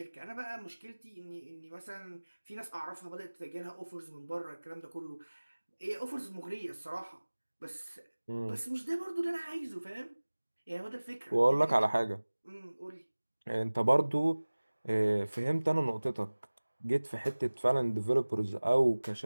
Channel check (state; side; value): inverted; both; correlation -1.00